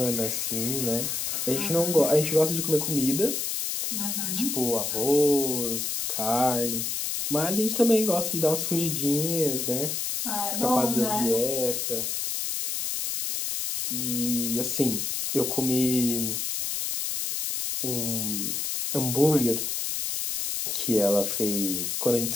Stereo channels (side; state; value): left; noise; hiss, 1 dB below the sound